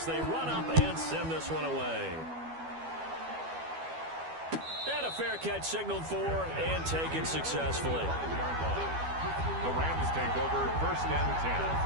they run up and send this one away. And a fair catch signaled for and taken successfully. The Rams take over first and 10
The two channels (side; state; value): left; late; 12 ms